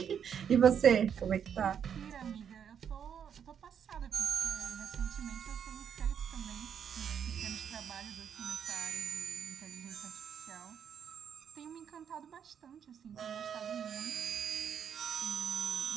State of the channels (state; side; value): quieter; left; 8.1 dB